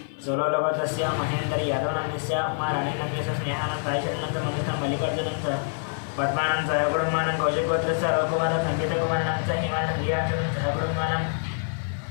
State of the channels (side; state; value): right; silent; 55 dB below the other